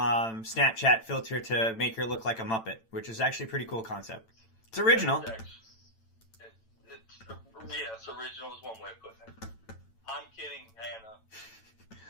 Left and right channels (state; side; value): late; right; 9.0 ms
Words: filter to make her look like a Muppet, which is actually a pretty cool concept. It's original. Yes, original is one way of putting it. I'm kidding, Hannah.